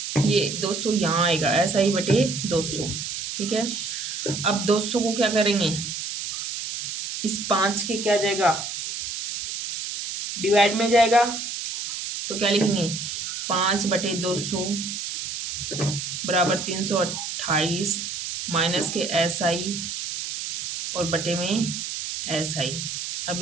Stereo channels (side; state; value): right; noise; hiss, 5 dB below the sound